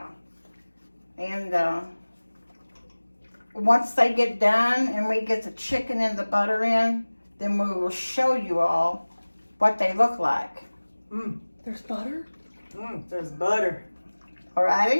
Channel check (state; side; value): inverted; both; correlation -1.00